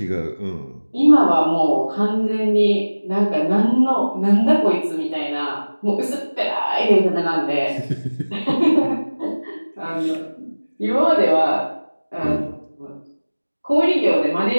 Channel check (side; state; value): both; inverted; correlation -1.00